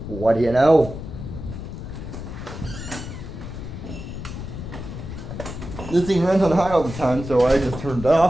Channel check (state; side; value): noise; left; rumble, 9 dB below the sound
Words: What do you know? This thing runs on high all the time, so I just turned it